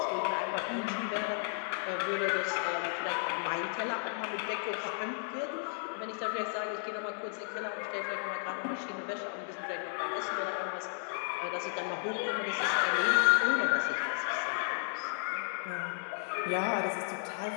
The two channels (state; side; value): silent; right; 55 dB below the other